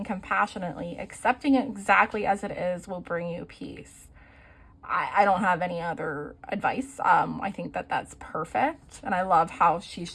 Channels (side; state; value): both; identical; correlation 1.00